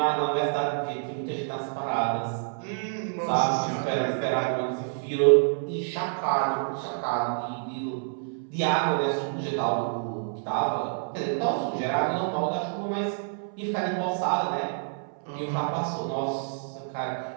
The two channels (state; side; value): silent; left; 59 dB below the other